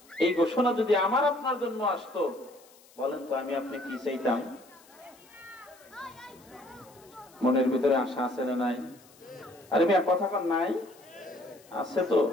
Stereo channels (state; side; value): noise; left; hiss, 26 dB below the sound